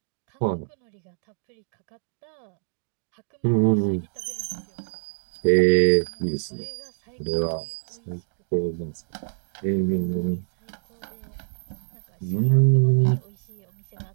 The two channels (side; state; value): left; silent; digital silence